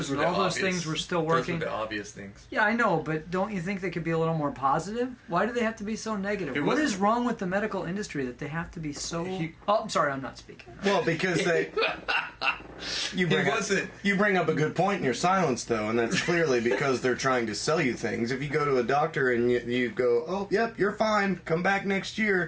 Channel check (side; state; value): both; identical; correlation 1.00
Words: were and the all those obvious- things were still Those working? were the obvious things. Yeah, I know, but don't you think they could be a little more positive? Why do they have to be so negative? It What wasn't- is wrong with the medical industry that they have to be so... Oh, I'm sorry, I'm not speaking. Well, because you bring up a good point in your silence, though, and that's clearly because they're trying to sell you things. If you go to a doctor and you go, "Oh, yep, you're fine. Come back next